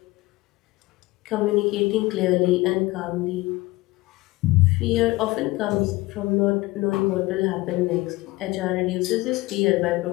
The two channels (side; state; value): right; quieter; 20.2 dB